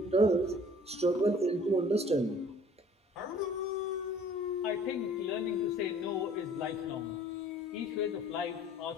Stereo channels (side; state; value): both; normal; correlation 0.52